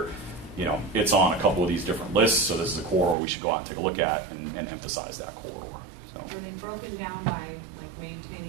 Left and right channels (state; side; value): drops out; left; at 3.2 s